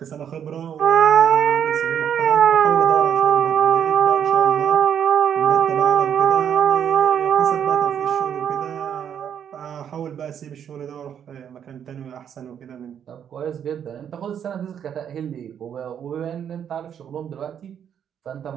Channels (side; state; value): left; quieter; 8.7 dB